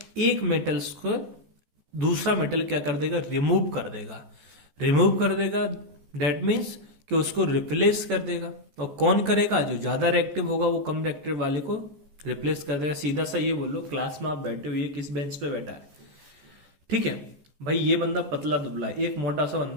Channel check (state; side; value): late; left; 14 ms